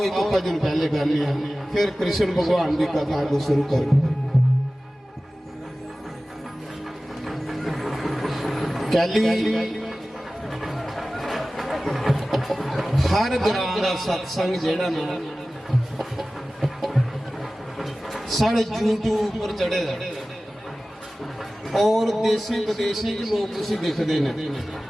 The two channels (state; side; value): normal; both; correlation 0.96